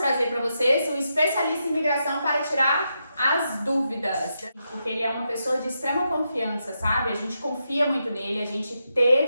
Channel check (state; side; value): inverted; both; correlation -0.84